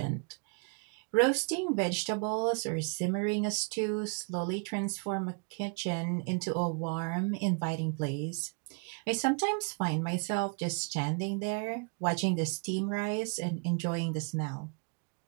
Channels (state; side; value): quieter; left; 36.1 dB